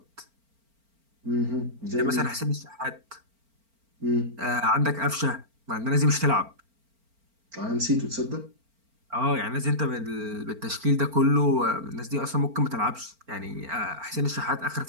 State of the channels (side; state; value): left; late; 4.4 ms